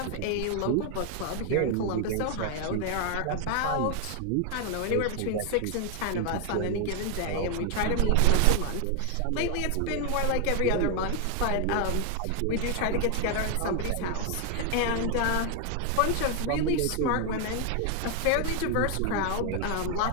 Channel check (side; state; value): both; different; correlation 0.00